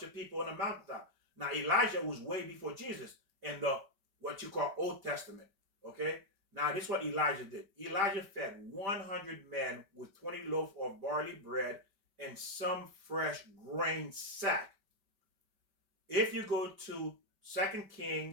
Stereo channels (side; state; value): left; late; 5.2 ms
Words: of people on the mountaintop. Now Elijah was way before Jesus in the what you call Old Testament. Okay. Now this is what Elijah did. Elijah fed 100 men with 20 loaves of barley bread and some fresh grain sack. If you go to 2